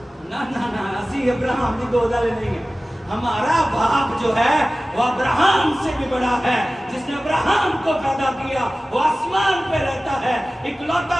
ना ना ना, असी अब्राहम की गोद वाले नहीं है। हमारा बाप जो है वो अब्राहम से भी बड़ा है, जिसने अब्राहम को पैदा किया, वो आसमान पे रहता है। इकलौता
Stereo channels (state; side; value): normal; both; correlation 0.97